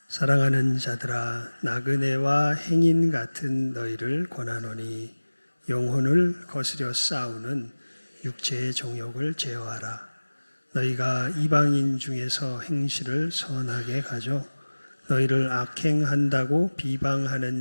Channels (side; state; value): both; inverted; correlation -1.00